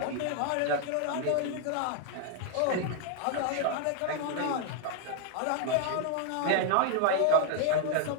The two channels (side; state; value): both; different; correlation 0.00